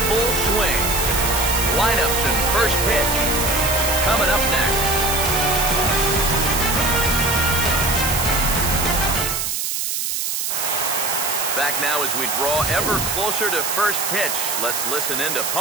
full swing. Lineups and first pitch coming up next. Back now as we draw ever closer to first pitch. Let's listen in to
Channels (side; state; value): right; noise; hiss, 1 dB below the sound